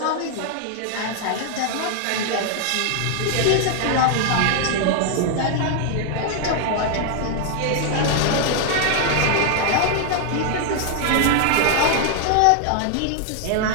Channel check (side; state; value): both; different; correlation 0.00